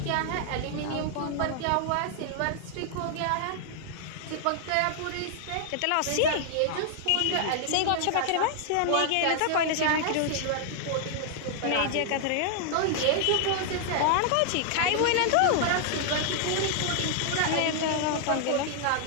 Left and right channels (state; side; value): different; both; correlation 0.00